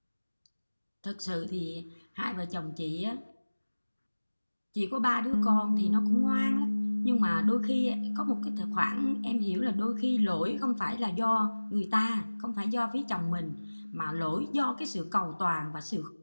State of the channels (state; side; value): inverted; both; correlation -1.00